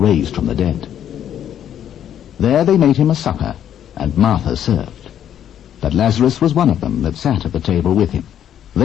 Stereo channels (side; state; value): right; quieter; 10.1 dB